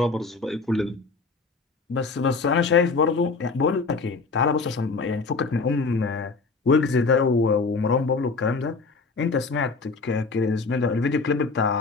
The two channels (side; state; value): right; quieter; 4.2 dB